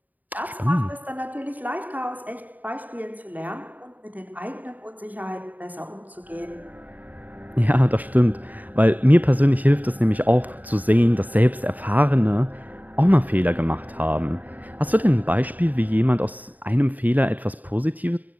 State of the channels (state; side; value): late; left; 0.080 ms